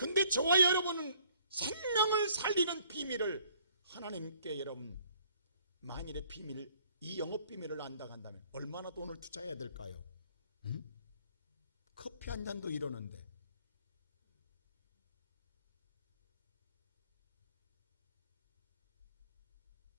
저와 여러분은 생명을 살리는 비밀을 하나님께 여러분 만일의 비밀, 이 영업 비밀을 안다고 한다면 얼마나 돈을 투자해야 될까요? 응? 커피 한 잔도 이러는데.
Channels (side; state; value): both; inverted; correlation -0.61